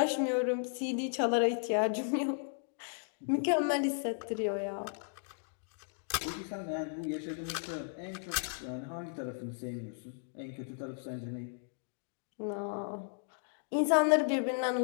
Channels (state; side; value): silent; right; digital silence